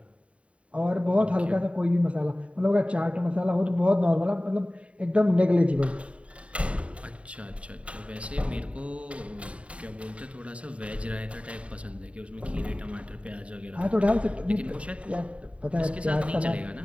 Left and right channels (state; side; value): late; left; 0.063 ms